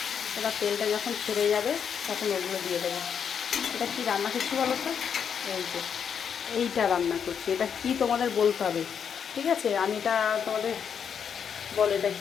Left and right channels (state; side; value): quieter; right; 7.4 dB